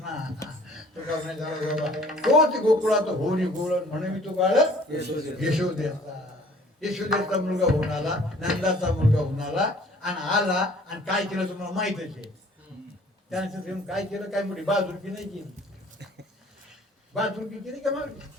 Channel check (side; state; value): both; normal; correlation 0.53